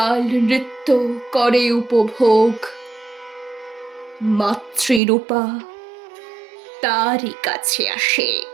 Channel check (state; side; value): drops out; left; at 5.0 s